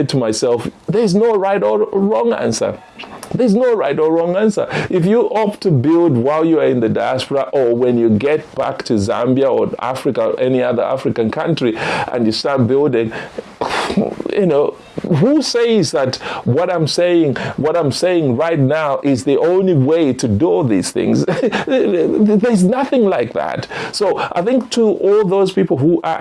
to myself, there's no right or wrong answer. There's no right or wrong answer. If you opt to build while you are in the diaspora, or when you get back to Zambia or Africa or any other African country and you start building, who says that what I'm saying right now is the only way to do these things? There's nothing like that. So I think to all those people who are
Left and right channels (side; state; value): both; identical; correlation 1.00